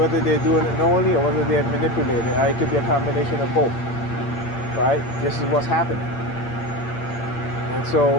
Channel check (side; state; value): right; late; 8.7 ms